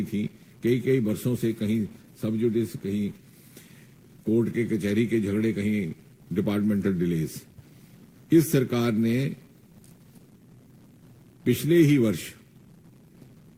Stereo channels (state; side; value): identical; both; correlation 1.00